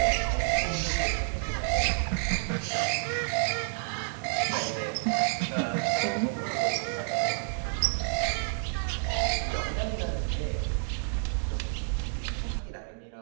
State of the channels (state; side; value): silent; left; digital silence